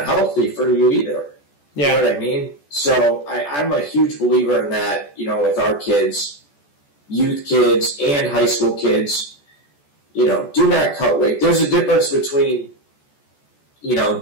healthy for you either. Yeah. You know what I mean? So I'm a huge believer in that, with our kids, youth kids and high school kids, do not cut weight. There's a difference between,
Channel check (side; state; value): right; late; 14 ms